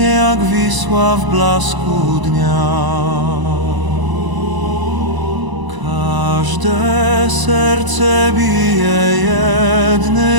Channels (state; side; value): late; left; 1.0 ms